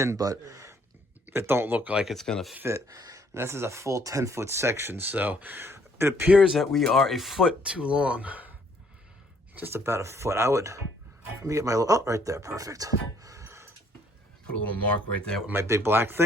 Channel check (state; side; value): normal; both; correlation 0.65